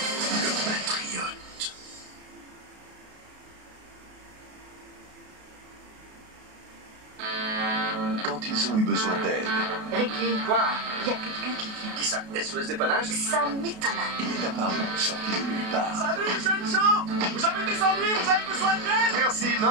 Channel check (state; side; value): late; left; 33 ms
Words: patriote. Quand ils ont eu besoin d'aide, Ricky, Quoi? il y a quelqu'un qui vient. Qui ça? SOS dépannage? Ça m'étonne. il est apparu, sorti de nulle part. Salut, jeunes gens! Vous avez des ennuis? Vous avez besoin d'aide? Merci,